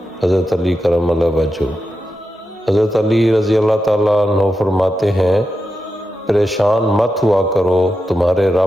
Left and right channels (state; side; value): normal; both; correlation 0.89